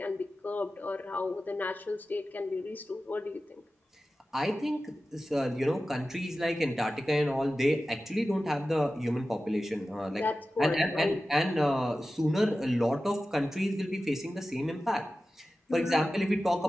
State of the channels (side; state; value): both; normal; correlation 0.94